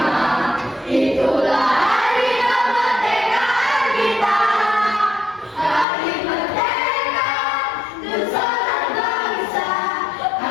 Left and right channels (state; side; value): drops out; right; at 5.9 s